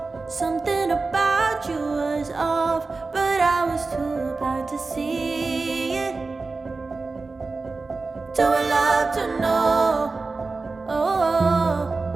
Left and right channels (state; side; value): quieter; left; 3.8 dB